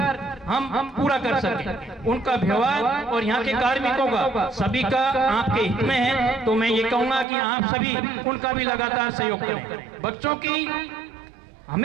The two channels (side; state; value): left; drops out; at 7.2 s